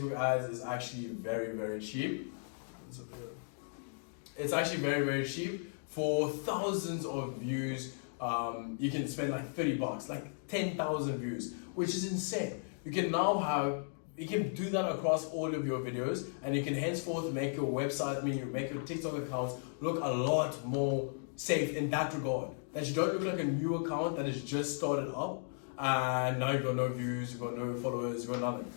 ads is actually very, very cheap. It's actually very, very cheap. For thousands of views, you can spend like $30, like 10,000 views, which is insane. You can do that across all of your videos, and you can henceforth make your website, make your TikTok accounts look a lot more safe in that regard. That you don't look like a new account that has just started up and now you've got no views, you've got no followers, you've got nothing.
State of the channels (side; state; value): right; silent; digital silence